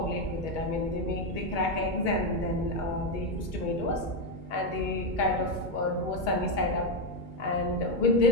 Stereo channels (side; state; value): right; late; 2.2 ms